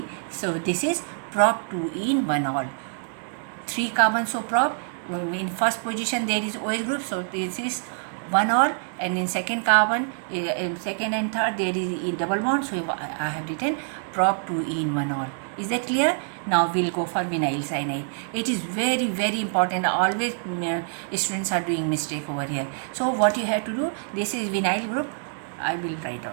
So this is prop 2 in 1 all. 3 carbons, so prop. In first position there is OH group, so this is 1 all, and in second carbon, in second and third there is in double bond, so I have written prop 2 in 1 all. Is that clear? Now we'll go for vinyl cyanide. It is very, very important. Always students are doing mistake over here. So what you have to do, this is vinyl group, I will write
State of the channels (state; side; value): silent; left; digital silence